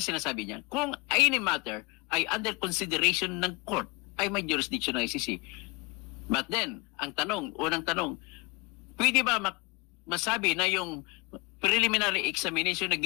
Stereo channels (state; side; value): quieter; right; 27.6 dB